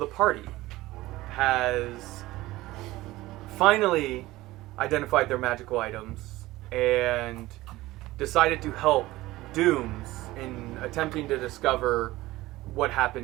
party has finally identified their magical items and decided to help Dooms in attempting to discover what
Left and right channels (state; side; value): quieter; left; 18.0 dB